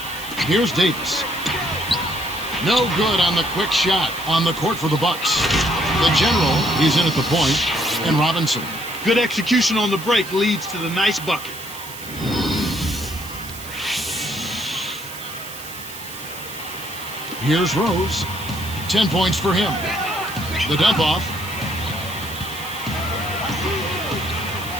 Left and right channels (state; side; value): noise; right; hiss, 13 dB below the sound